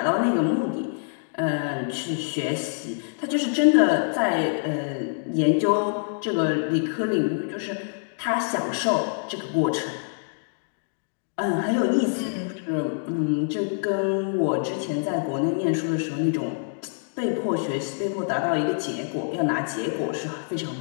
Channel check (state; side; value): silent; right; digital silence